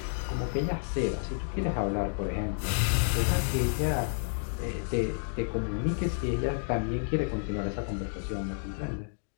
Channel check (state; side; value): silent; right; digital silence